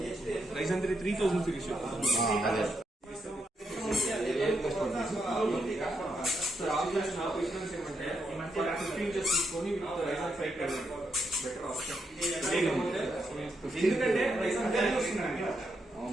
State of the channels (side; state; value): both; normal; correlation 0.81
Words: Ryzen 3 3000 series. అదే. ఎందుకంటే